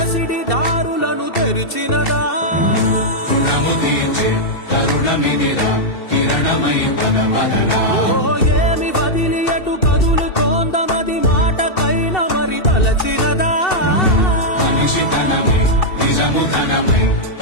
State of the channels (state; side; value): late; right; 2.7 ms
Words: దారులను తెరిచినదా రుణము తీర్చే కరుణమిదిరా కిరణమై పద పదరా ఓ ఏమి వదిలి అటు కదులుతోందమది మాటకైన మరి తలచినదా మనిషితనమై నిజముతనమై